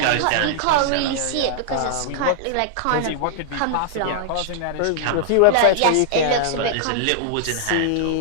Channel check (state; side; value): different; both; correlation -0.01